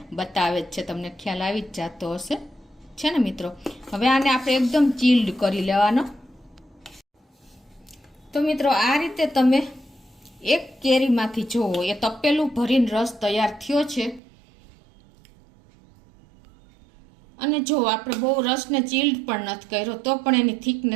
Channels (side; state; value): left; drops out; at 14.2 s